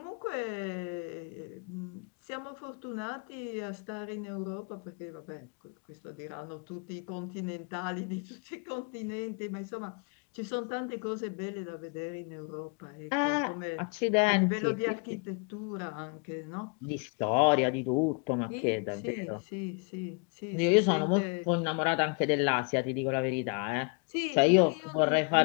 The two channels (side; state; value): right; quieter; 35.4 dB